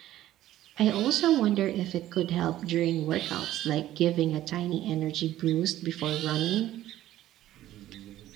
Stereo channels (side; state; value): left; quieter; 13.8 dB